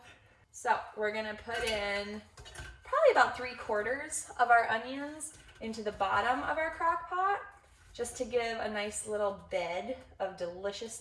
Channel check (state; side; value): identical; both; correlation 1.00